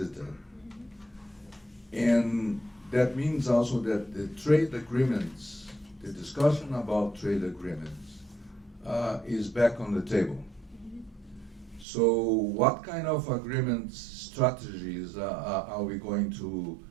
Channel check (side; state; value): left; drops out; at 11.9 s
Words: and that means also that the trade agreements, the discussion about trade agreements, is back on the table. So what kind of agreements, strategies are we going to